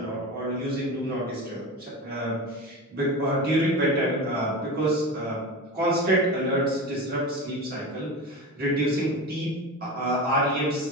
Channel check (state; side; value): normal; both; correlation 0.27